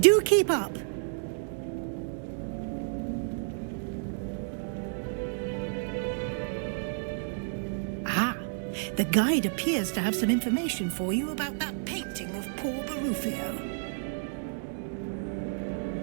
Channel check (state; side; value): silent; left; digital silence